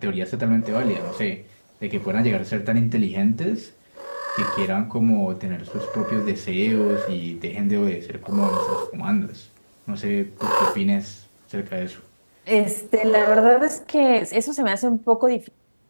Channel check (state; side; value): inverted; both; correlation -1.00